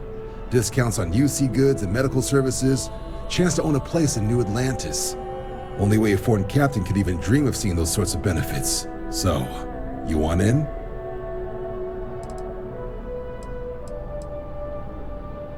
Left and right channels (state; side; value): identical; both; correlation 1.00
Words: Discounts on UC goods and medical services, chance to own a place in New Atlantis. Only way a foreign captain could even dream of seeing those sorts of benefits. So, you want in?